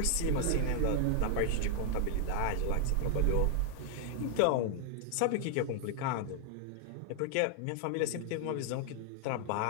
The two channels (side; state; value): both; different; correlation 0.00